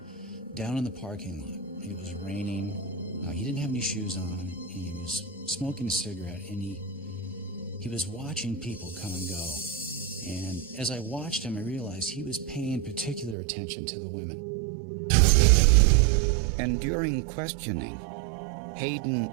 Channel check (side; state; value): left; drops out; at 13.4 s